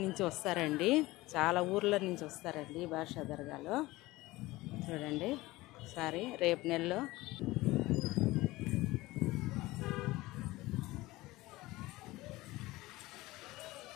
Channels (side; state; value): right; quieter; 19.5 dB